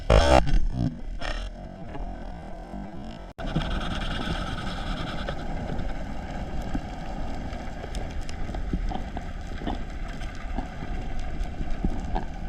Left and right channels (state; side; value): identical; both; correlation 1.00